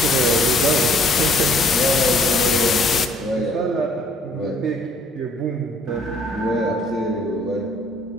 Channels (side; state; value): both; normal; correlation 0.61